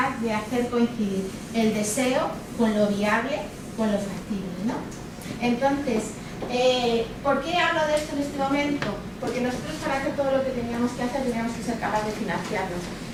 de hacer coincidir el deseo con lo viable, con lo factible, ¿no? Entonces, ¿por qué hablo de esto en este momento? Porque nosotros, para hacer todo lo que teníamos que hacer, teníamos que ser capaces de financiarnos,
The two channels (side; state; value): both; identical; correlation 1.00